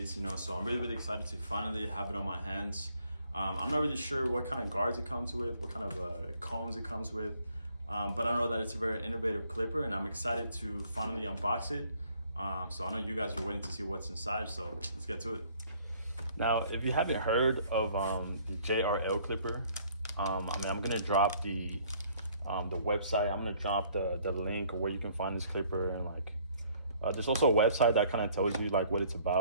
so I'm really excited to finally have it on my hands. I'm not really sure what kind of guards it comes with, what kind of combs it comes with, but I know that it's a very innovative clipper and I'm excited to finally unbox it. So I know you guys are waiting to see what's inside, so let's get to it. Now, if you haven't heard of the JRL clipper, I'm gonna drop the website. I'm gonna drop the link where you can find this clipper, and there's also a website that kind of tells you like what it's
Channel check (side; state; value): both; inverted; correlation -0.61